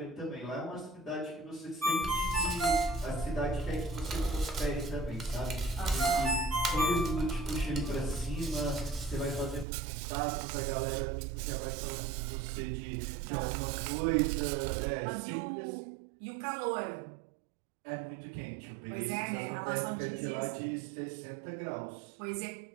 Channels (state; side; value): drops out; left; at 9.7 s